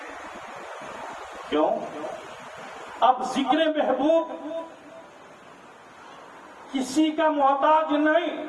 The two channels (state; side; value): identical; both; correlation 1.00